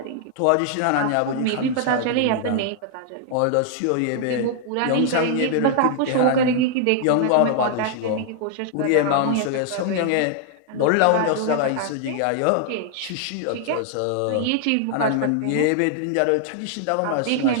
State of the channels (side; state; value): both; different; correlation -0.01